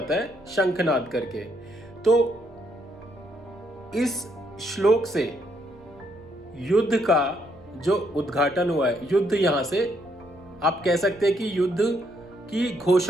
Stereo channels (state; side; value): noise; right; hum, 27 dB below the sound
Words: है शंखनाद करके। तो इस श्लोक से युद्ध का जो उद्घाटन हुआ है, युद्ध यहां से आप कह सकते हैं कि युद्ध की